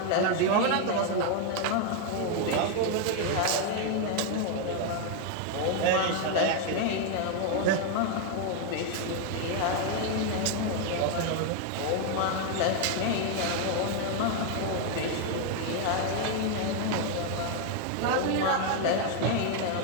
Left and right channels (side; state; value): both; different; correlation 0.00